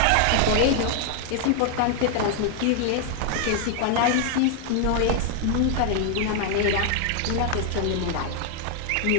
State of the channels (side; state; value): both; different; correlation 0.00